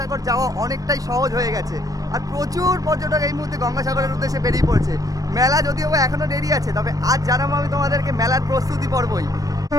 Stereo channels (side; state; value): left; late; 0.17 ms